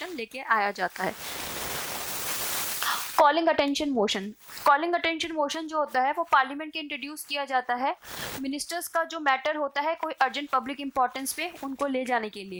लेके आया जाता है। कॉलिंग अटेंशन मोशन जो होता है वो पार्लियामेंट के इंट्रोड्यूस किया जाता है मिनिस्टर्स का जो मैटर होता है कोई अर्जेंट पब्लिक इंपॉर्टेंस पे उनको ले जाने के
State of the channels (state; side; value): identical; both; correlation 1.00